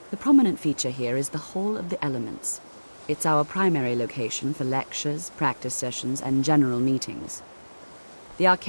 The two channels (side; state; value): both; inverted; correlation -1.00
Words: The prominent feature here is the Hall of the Elements. It's our primary location for lectures, practice sessions, and general meetings. The